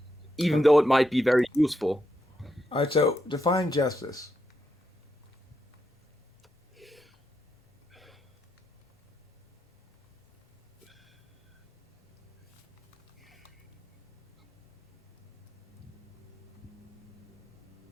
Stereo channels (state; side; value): normal; both; correlation 0.83